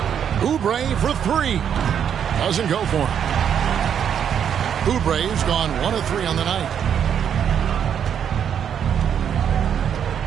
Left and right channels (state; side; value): quieter; left; 8.5 dB